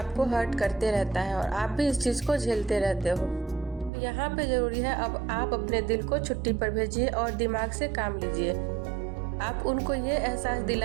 हर्ट करते रहता है और आप भी इस चीज़ को झेलते रहते हो। तो यहाँ पे ज़रूरी है अब आप अपने दिल को छुट्टी पर भेजिए और दिमाग से काम लीजिए। आप उनको ये एहसास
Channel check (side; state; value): left; drops out; at 3.9 s